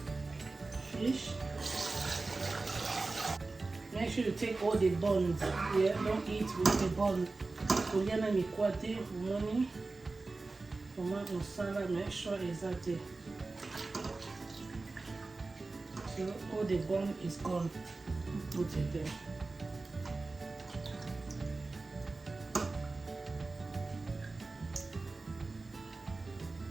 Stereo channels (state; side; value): quieter; left; 3.5 dB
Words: Fish. Make sure you take all the bones. Yeah, don't eat with the bone. Kuliana ni kwate, umoni. Mama musala, make sure it's at it. So all the bone is gone. Put it there.